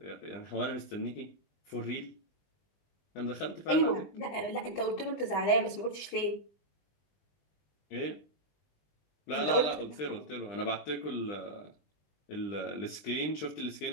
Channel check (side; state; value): right; late; 20 ms